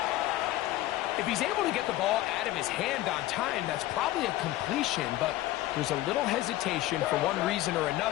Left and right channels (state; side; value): quieter; right; 15.9 dB